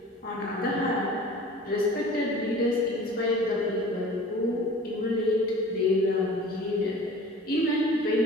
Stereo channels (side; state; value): both; normal; correlation 0.43